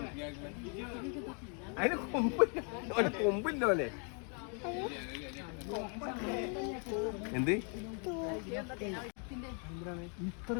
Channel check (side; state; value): right; quieter; 39.6 dB